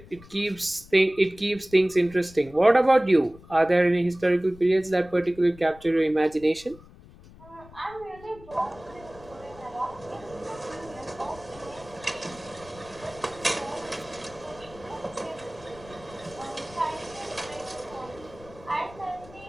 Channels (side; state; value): left; noise; rumble, 21 dB below the sound